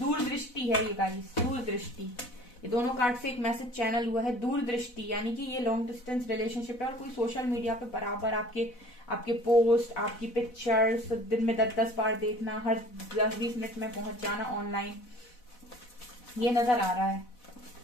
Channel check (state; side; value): late; right; 4.1 ms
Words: है ये गाइस, दूरदृष्टि। ये दोनों कार्ड से एक मैसेज चैनल हुआ है, दूरदृष्टि, यानी कि ये लॉन्ग डिस्टेंस रिलेशनशिप है और कोई सोशल मीडिया पे बराबर आपके पोस्ट, आपकी पिक्चर्स दिन में 10-10 बार देखना, हर 10-20 मिनट में पहुंच जाना ऑनलाइन, ये नजर आ रहा है।